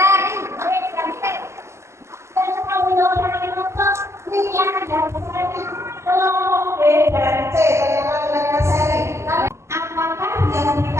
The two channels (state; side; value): late; left; 0.13 ms